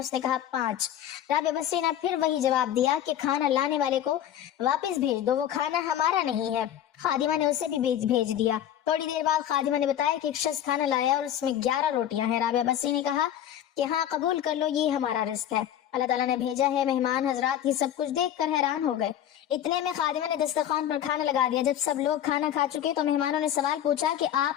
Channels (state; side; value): quieter; right; 10.8 dB